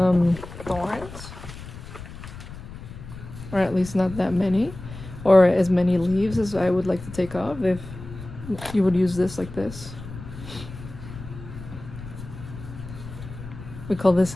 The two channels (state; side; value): noise; left; rumble, 13 dB below the sound